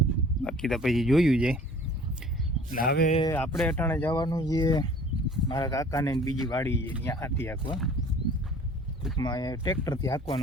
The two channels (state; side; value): normal; both; correlation 0.49